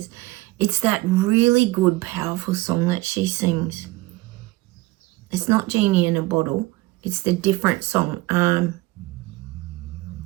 It's that really good, powerful song that she sings. It's not Genie in a Bottle. It's the different song.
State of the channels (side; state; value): left; quieter; 20.2 dB